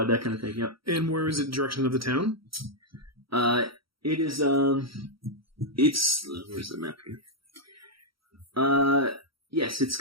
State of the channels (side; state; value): left; late; 0.75 ms